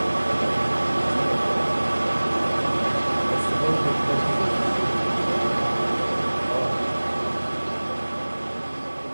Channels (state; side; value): inverted; both; correlation -1.00